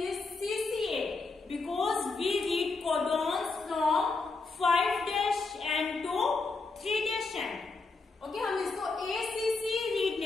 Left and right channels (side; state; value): right; quieter; 3.9 dB